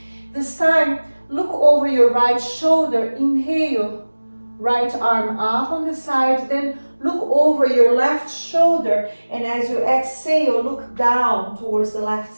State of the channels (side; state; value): both; inverted; correlation -1.00